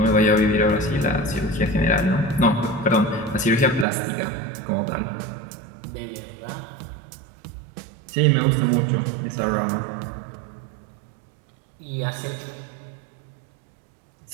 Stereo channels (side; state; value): left; drops out; at 3.9 s